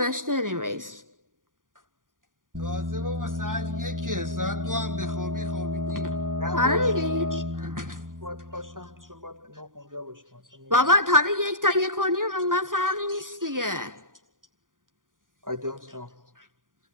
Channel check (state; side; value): late; left; 0.89 ms